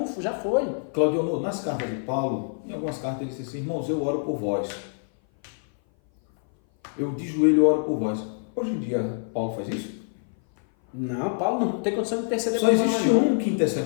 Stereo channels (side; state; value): right; silent; 57 dB below the other